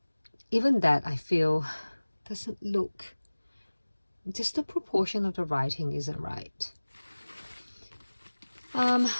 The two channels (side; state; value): both; inverted; correlation -1.00